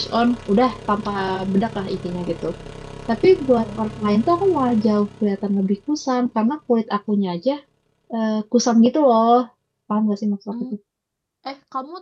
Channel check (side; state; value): both; identical; correlation 1.00